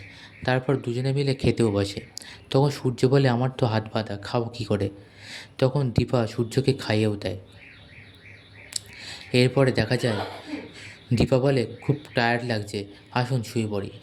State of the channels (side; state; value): both; identical; correlation 1.00